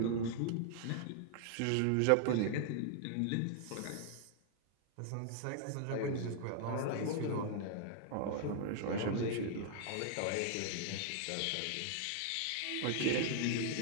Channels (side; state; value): both; different; correlation -0.01